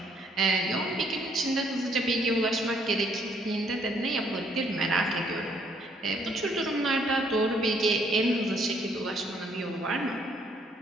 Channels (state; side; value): normal; both; correlation 0.67